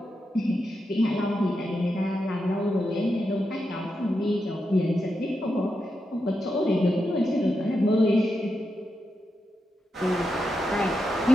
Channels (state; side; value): normal; both; correlation 0.86